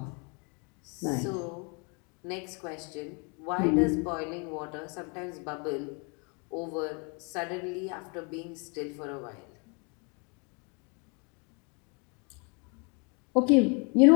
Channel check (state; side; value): quieter; right; 34.0 dB